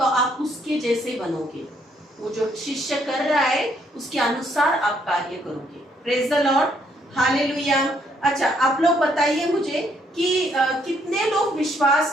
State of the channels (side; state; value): both; normal; correlation 0.70